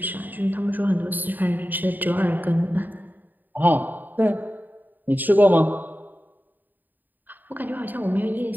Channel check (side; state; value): left; late; 0.088 ms